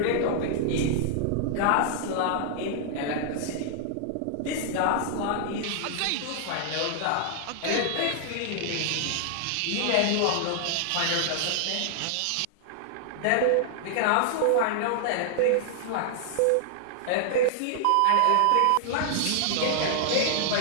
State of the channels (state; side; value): different; both; correlation -0.01